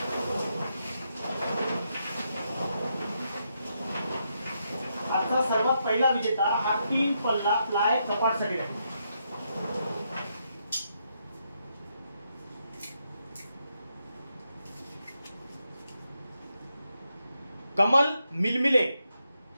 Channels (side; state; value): both; inverted; correlation -0.81